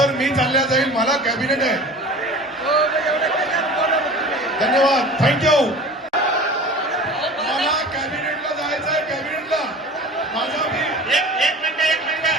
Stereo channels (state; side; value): normal; both; correlation 0.39